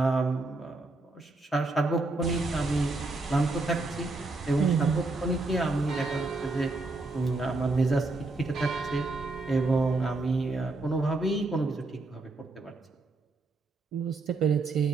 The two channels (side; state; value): left; quieter; 3.1 dB